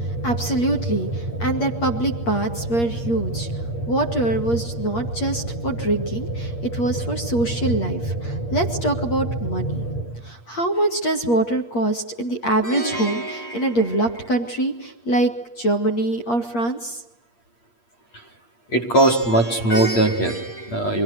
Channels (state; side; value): late; right; 8.5 ms